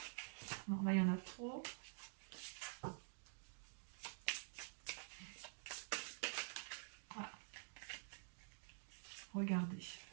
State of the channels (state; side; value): silent; left; digital silence